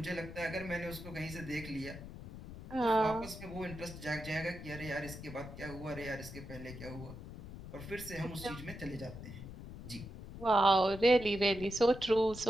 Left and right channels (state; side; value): noise; left; rumble, 12 dB below the sound